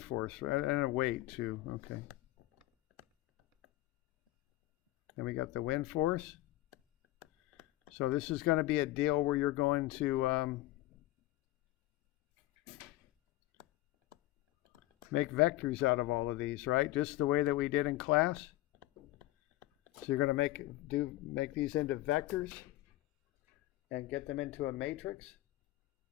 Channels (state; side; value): quieter; right; 16.9 dB